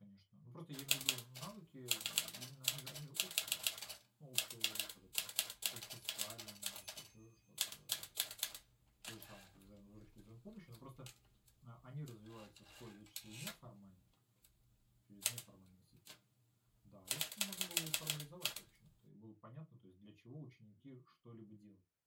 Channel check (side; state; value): both; identical; correlation 1.00